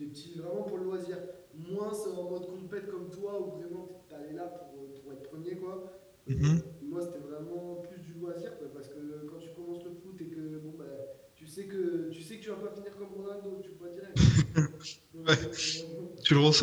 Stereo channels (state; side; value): identical; both; correlation 1.00